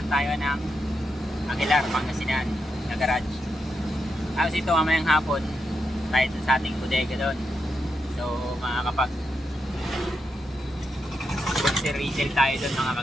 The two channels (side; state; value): both; normal; correlation 0.84